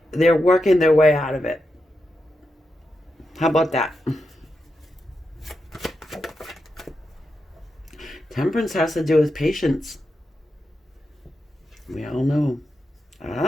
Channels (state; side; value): normal; both; correlation 0.87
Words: they're working their way out of it. How about that? Temperance has to do with patience. We all know.